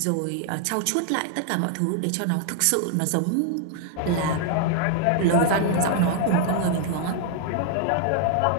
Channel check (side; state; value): both; different; correlation 0.00